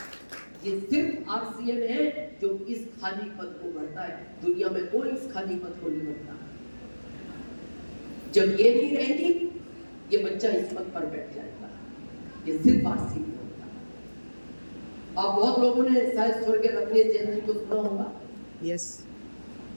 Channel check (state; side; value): inverted; both; correlation -1.00